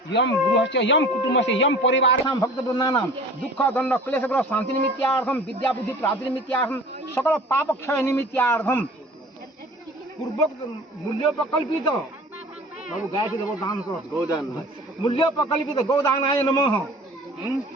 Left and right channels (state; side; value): normal; both; correlation 0.44